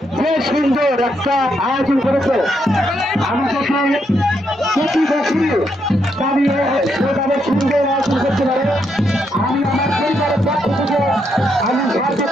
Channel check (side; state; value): both; normal; correlation 0.78